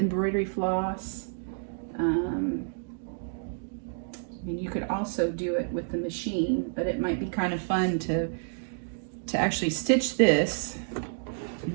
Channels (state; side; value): silent; left; digital silence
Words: floss. I mean, you could also do it with the machine, but it might be kind of fun to actually stitch this.